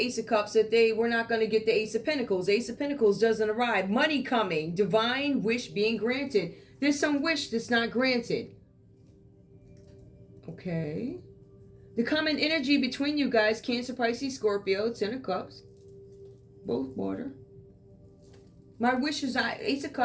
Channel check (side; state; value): both; identical; correlation 1.00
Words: Ace of Cups that they were not going to get the Ace of Pentacles. Ace of Pentacles doesn't arrive. Money coming. Divine wish being granted. There's some wish that's not granted. Okay. The common energy between you guys, Cancer, Pisces, Scorpio, Ten of Cups. Both water. My wish is Ace of